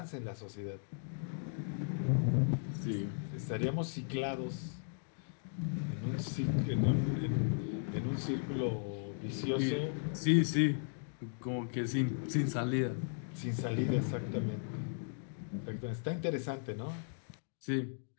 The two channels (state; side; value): silent; right; digital silence